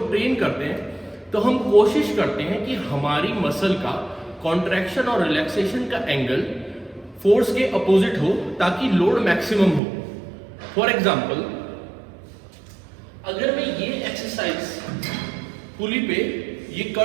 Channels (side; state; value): left; drops out; at 9.8 s